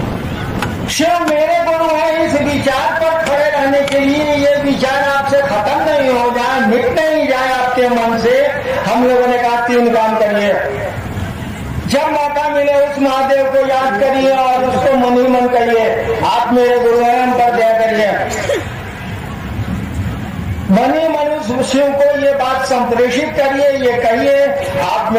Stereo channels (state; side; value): identical; both; correlation 1.00